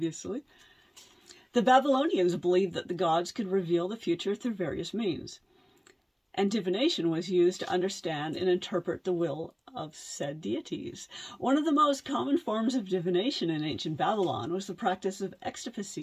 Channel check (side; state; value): both; identical; correlation 1.00